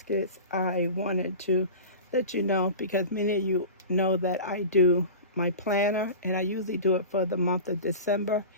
I wanted to let you know, because many of you know that I do my planner, and I usually do it for the month of December.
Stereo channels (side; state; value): both; inverted; correlation -0.33